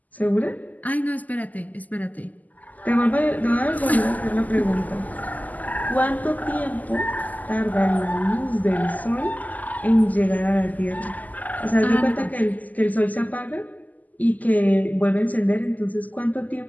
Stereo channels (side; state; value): right; late; 0.080 ms